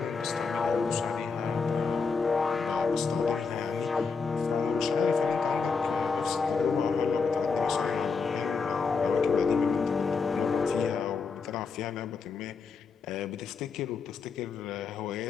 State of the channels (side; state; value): right; quieter; 5.1 dB